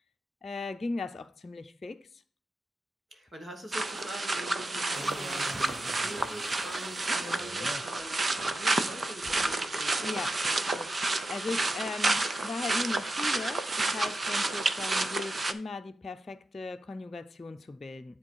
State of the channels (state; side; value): normal; both; correlation 0.90